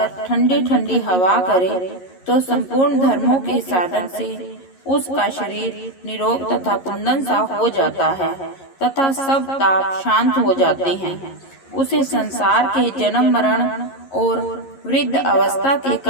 ठंडी ठंडी हवा करे, तो संपूर्ण धर्मों के साधन से उसका शरीर निरोग तथा कुंदन सा हो जाता है तथा सब ताप शांत हो जाते हैं। उसे संसार के जन्म मरण और वृद्ध अवस्था के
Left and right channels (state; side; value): late; right; 11 ms